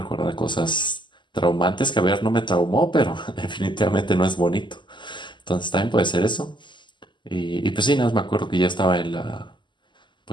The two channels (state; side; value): late; right; 0.22 ms